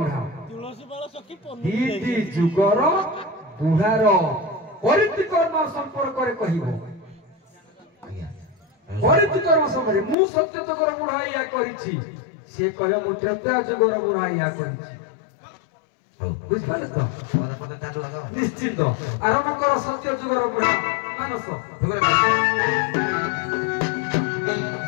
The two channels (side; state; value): right; drops out; at 10.2 s